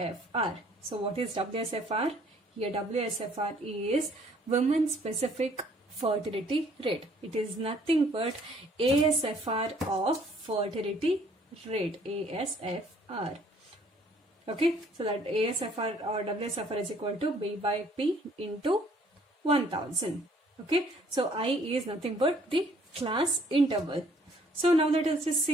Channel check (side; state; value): both; normal; correlation 0.60